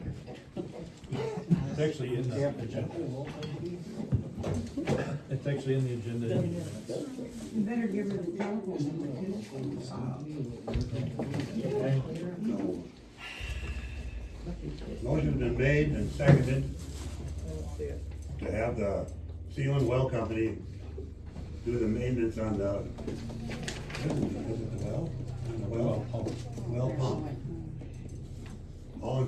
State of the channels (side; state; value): both; identical; correlation 1.00